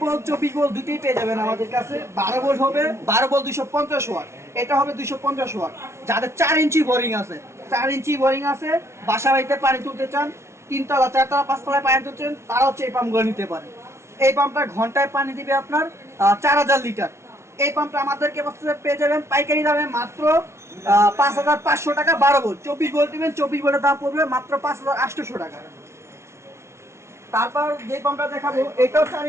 24 ভোল্ট দুটোই পেয়ে যাবেন আমাদের কাছে। 12 ভোল্ট হবে 12 ভোল্ট 250 ওয়াট, এটা হবে 250 ওয়াট। যাদের 4 ইঞ্চি বোরিং আছে, 4 ইঞ্চি বোরিং আছে, বাসা বাড়িতে পানি তুলতে চান, 3 তলা 4 তলা 5 তলায় পানি তুলতে চান, তারা হচ্ছে এই পাম্পগুলো নিতে পারে। এই পাম্পটা ঘন্টায় পানি দিবে আপনার 4000 লিটার। এই পাম্পটা আমাদেরকে পেয়ে যাবেন পাইকারি দামে মাত্র 5500 টাকা। 12 ভোল্ট, 24 ভোল্ট দিবেন, 24 ভোল্টের দাম পড়বে মাত্র 5800 টাকা। তারপর যে পাম্পটা দেখাবো, এটাও 4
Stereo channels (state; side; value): late; left; 0.13 ms